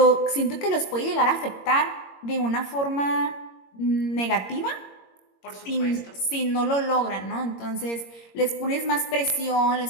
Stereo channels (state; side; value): late; right; 21 ms